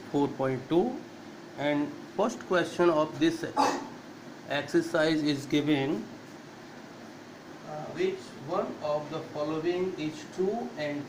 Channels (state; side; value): identical; both; correlation 1.00